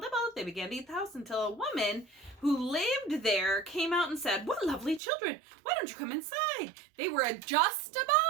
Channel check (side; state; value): left; drops out; at 5.0 s